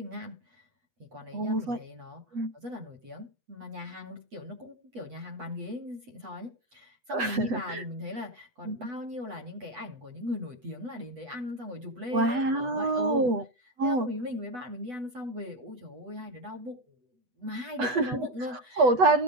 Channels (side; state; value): left; late; 8.1 ms